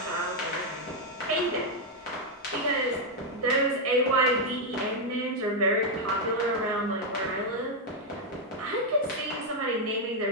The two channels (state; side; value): normal; both; correlation 0.00